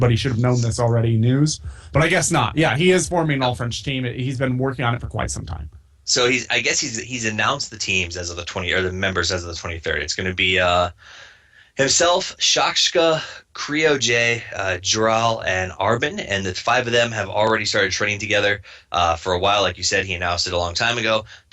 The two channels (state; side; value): identical; both; correlation 1.00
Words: should have known this already, news. But I guess not. Yeah, he is forming an all-French team. He's been working on it for quite some time. So he's announced the teams as of the 20, or the members as of the 23rd. It's going to be himself, Shakshka, Creo J, Jural, and Arbin, and the 5 of them have already started training together for a while. Like you said, he announced it a long time ago.